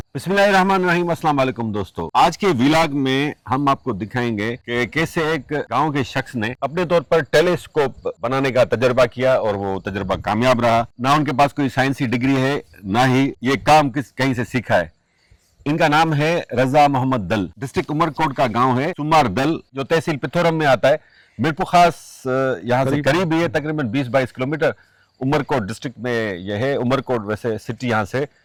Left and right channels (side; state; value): both; identical; correlation 1.00